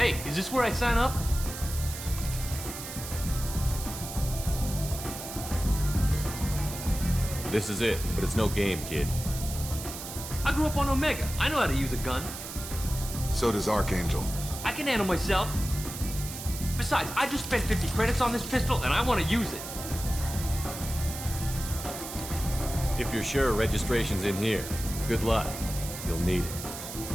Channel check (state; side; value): noise; right; hiss, 9 dB below the sound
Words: is this where I sign up? This is it, but it's no game, kid. I grew up on Omega. I know how to use a gun. So does Archangel. I can handle myself. Besides, I just spent 50 credits on this pistol, and I want to use it. If you're sure registration's in here, good luck. You'll need